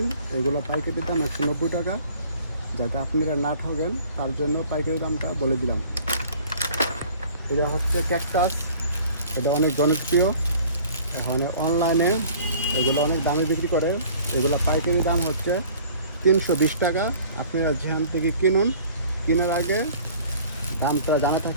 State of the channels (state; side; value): inverted; both; correlation -0.50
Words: এগুলো পাইকারি দাম 190 টাকা। যাতে আপনারা না ঠকেন তার জন্য পাইকারি দামটা বলে দিলাম। এটা হচ্ছে ক্যাকটাস। এটা অনেক জনপ্রিয়। এখন অনলাইনে এগুলো অনেক দামে বিক্রি করে। এগুলো পাইকারি দাম হচ্ছে 320 টাকা। আপনারা যেখান থেকে কিনুন, কেনার আগে দামটা জানা